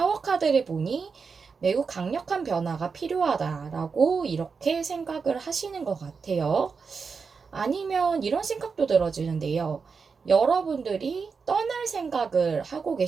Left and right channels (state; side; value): quieter; left; 5.3 dB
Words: 카드를 보니 매우 강력한 변화가 필요하다라고 이렇게 생각을 하시는 것 같아요. 아니면 이런 생각도 들어지는데요. 여러분들이 떠날 생각을 하고